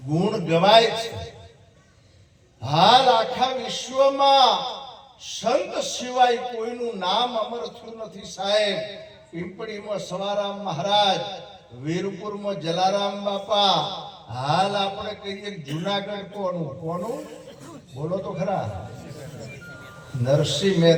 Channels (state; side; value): identical; both; correlation 1.00